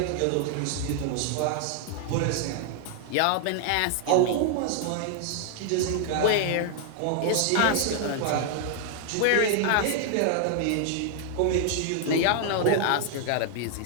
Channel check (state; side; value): different; both; correlation 0.00